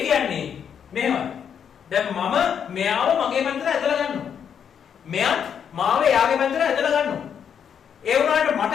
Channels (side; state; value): right; quieter; 7.9 dB